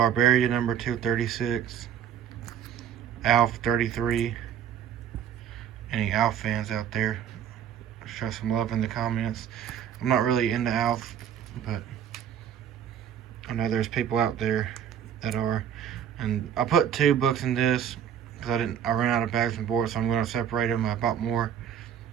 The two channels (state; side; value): quieter; left; 9.2 dB